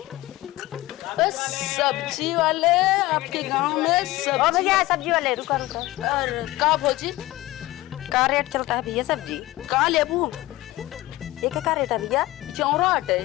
सब्जी वाले आपके गांव में ओ भैया सब्जी वाले रुका और का भौजी का रेट चलता है भैया सब्जी का लेबू एक का रेट है भैया 64 है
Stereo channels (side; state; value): right; quieter; 17.9 dB